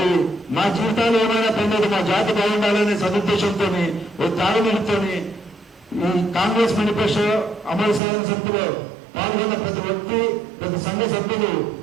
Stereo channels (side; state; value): left; drops out; at 8.0 s